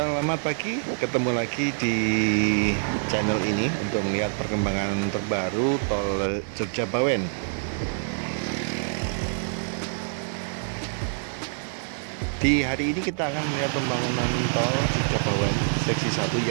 pagi, ketemu lagi di channel ini untuk melihat perkembangan terbaru tol Jogja Bawen. Di hari ini kita akan melihat pembangunan tol Jogja Bawen seksi 1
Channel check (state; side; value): silent; left; digital silence